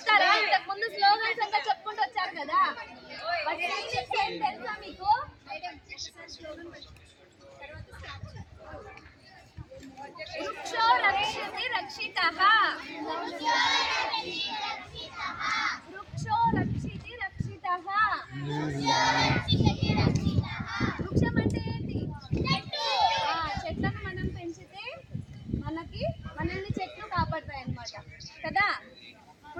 ఇంతకు ముందు స్లోగన్స్ అంతా చెప్పుకుంటూ వచ్చారు కదా. తెలుసా మీకు? వృక్షో రక్షతి రక్షితః, వృక్షో రక్షితి రక్షితః. వృక్షం అంటే ఏంటి? చెట్లను మనం పెంచితే మనల్ని చెట్లు కాపాడతాయి అన్నమాట కదా.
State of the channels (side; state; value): both; identical; correlation 1.00